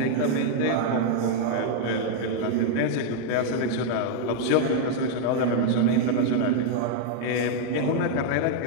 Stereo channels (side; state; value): both; different; correlation -0.01